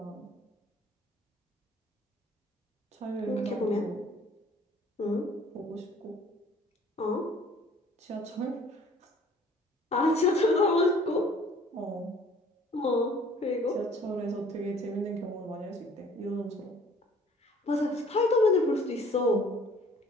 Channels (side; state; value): both; normal; correlation 0.54